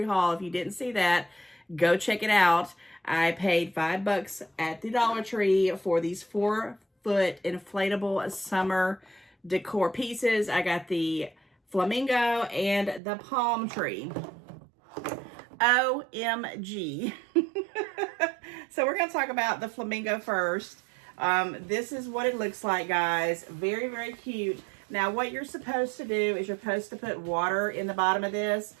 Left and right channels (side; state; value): left; drops out; at 13.0 s